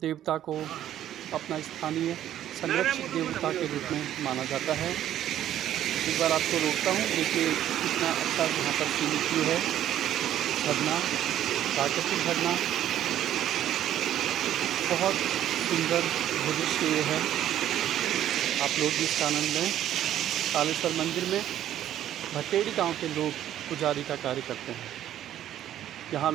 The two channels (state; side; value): quieter; left; 11.7 dB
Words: को अपना स्थानीय संरक्षित देवता के रूप में माना जाता है। एक बार आपको रोकता हूँ, देखिए कितना अच्छा यहाँ पर सीमित व्यू है। झरना, प्राकृतिक झरना, बहुत सुंदर दृश्य ये है। आप लोग भी इसका आनंद लें। तालेश्वर मंदिर में भटेड़ी गांव के लोग पुजारी का कार्य करते हैं। यहाँ